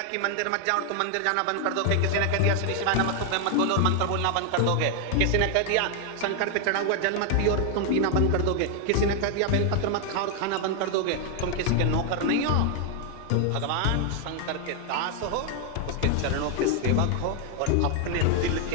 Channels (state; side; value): different; both; correlation 0.00